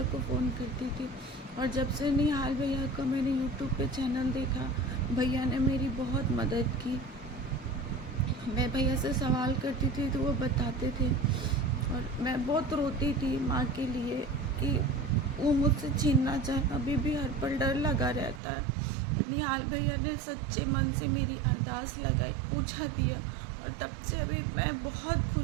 को फ़ोन करती थी, और जब से निहाल भैया का मैंने यूट्यूब पे चैनल देखा, भैया ने मेरी बहुत मदद की। मैं भैया से सवाल करती थी तो वो बताते थे, और मैं बहुत रोती थी माँ के लिए कि वो मुझसे छीनना चाहे। अभी भी हर पल डर लगा रहता है। निहाल भैया ने सच्चे मन से मेरी अरदास लगाई, पूछा दिया, और तब से अभी मैं बहुत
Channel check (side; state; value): left; drops out; at 18.4 s